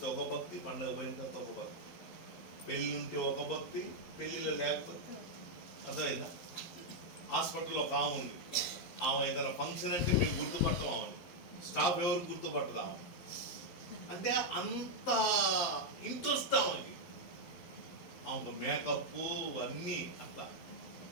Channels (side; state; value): right; late; 11 ms